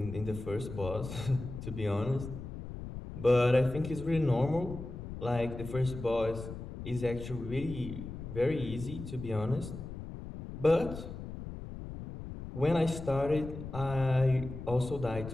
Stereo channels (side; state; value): left; noise; rumble, 9 dB below the sound